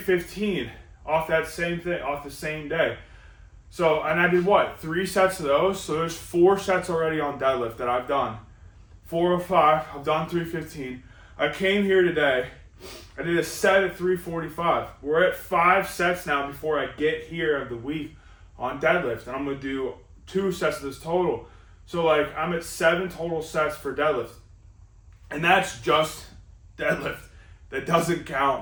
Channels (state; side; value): identical; both; correlation 1.00